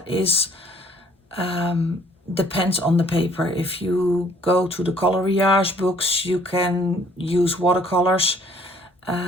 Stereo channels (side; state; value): both; normal; correlation 0.58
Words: is depends on the paper. If you go to the coloriage books, you can use watercolors.